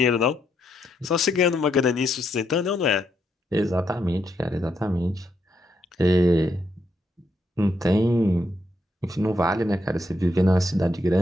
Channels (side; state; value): both; normal; correlation 0.78